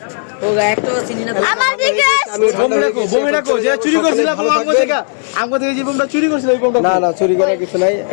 ও একটা চিনি না আমার দিকে আমি বোম রাখো, যে চুরি করছিল আমগো থেকে যে বোমটা চুরি করছিল ওই বোমটা। না চুরি করার কিছু নাই,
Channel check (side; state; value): right; silent; digital silence